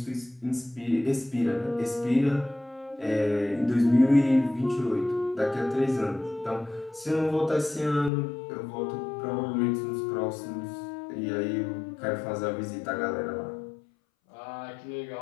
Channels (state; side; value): drops out; right; at 8.1 s